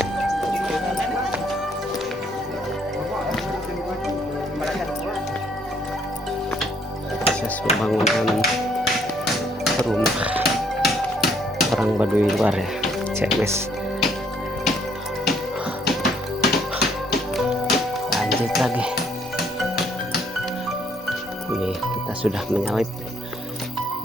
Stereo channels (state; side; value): normal; both; correlation 0.66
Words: Proses pembangunan rumah orang Baduy luar ya, CMS. Lanjut lagi. Ini kita sudah menyalip